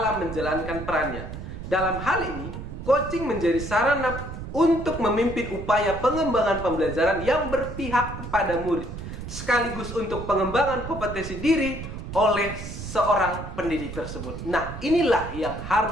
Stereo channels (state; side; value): noise; right; rumble, 9 dB below the sound